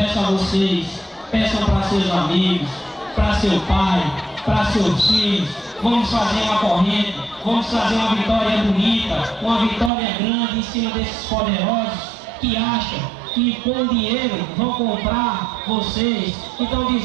a vocês, peçam para seus amigos, para seu pai, para seus filhos. Vamos fazer uma corrente, vamos fazer uma vitória bonita, uma vitória grande em cima desses poderosos que acham que com dinheiro vão comprar vocês. E estão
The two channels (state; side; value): drops out; left; at 9.9 s